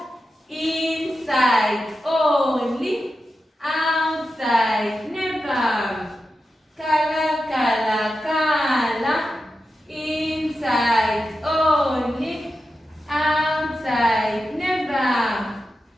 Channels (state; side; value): normal; both; correlation 0.90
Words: Inside only. Outside never. Color, color, color. Inside only. Outside never.